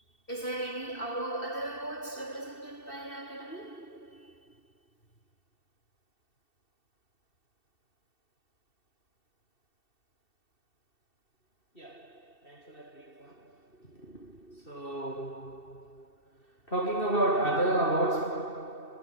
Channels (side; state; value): right; late; 2.7 ms